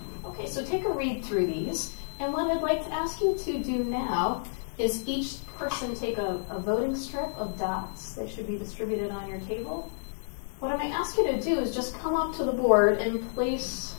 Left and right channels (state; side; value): silent; right; digital silence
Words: Okay, so take a read through these. And what I'd like to ask you to do now is each person take a voting strip of dots. They should be distributed on your table. What I might ask you to do is just come up to the board and place